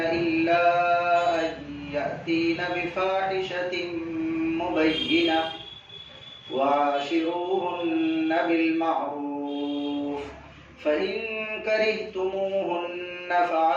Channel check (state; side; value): identical; both; correlation 1.00